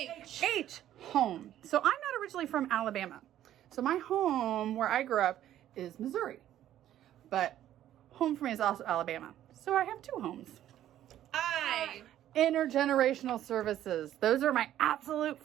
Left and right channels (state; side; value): quieter; left; 12.1 dB